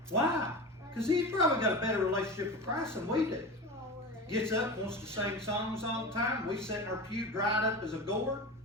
Why? Because he's probably got a better relationship with Christ than we do. Gets up, wants to sing songs all the time. We sit in our pew dried up as a gourd.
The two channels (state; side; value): normal; both; correlation 0.28